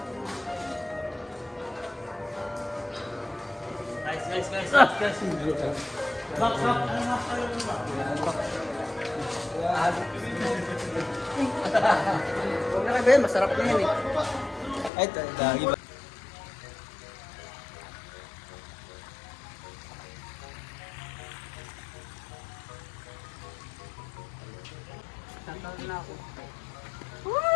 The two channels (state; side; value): drops out; right; at 14.9 s